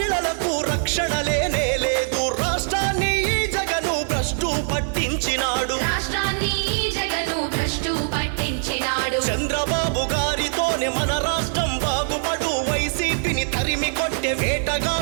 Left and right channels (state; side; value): silent; left; 55 dB below the other